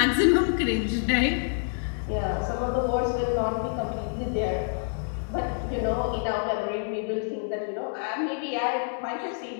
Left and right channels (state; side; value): silent; right; digital silence